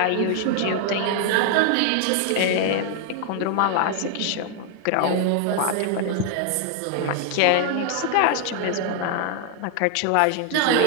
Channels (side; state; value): both; different; correlation 0.00